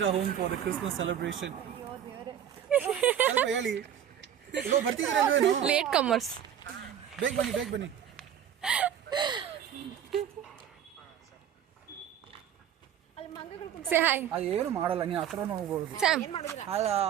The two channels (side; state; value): left; quieter; 9.6 dB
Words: our home for the Christmas celebration. ಹೇಳಿ. ಇವಾಗ ಬರ್ತಿದ್ದೀರಲ್ವೇನು? Late comers. ಬೇಗ ಬನ್ನಿ. Say hi. ಏನು ಮಾಡಲ್ಲ, ನೀವು ಹತ್ರ ಹೋಗ್ಬೋದು. Sam.